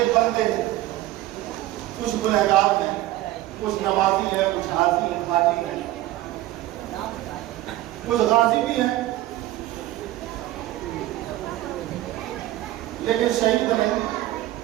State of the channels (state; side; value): quieter; left; 15.8 dB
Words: बंदे हैं, कुछ गुनहगार हैं, कुछ नमाजी है, कुछ हाजी हैं, हाजी हैं, कुछ गाजी भी हैं, लेकिन शहीद नहीं